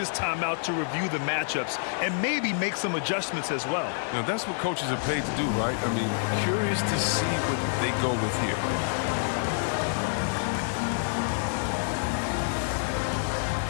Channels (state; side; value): silent; right; digital silence